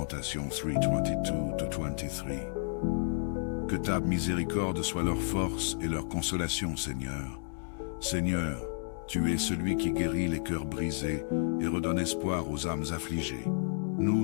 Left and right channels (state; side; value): silent; right; digital silence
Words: 3:22-23. Que ta miséricorde soit leur force et leur consolation, Seigneur. Seigneur, tu es celui qui guérit les cœurs brisés et redonne espoir aux âmes affligées.